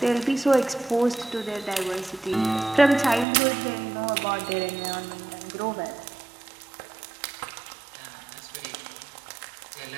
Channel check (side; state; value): left; drops out; at 3.2 s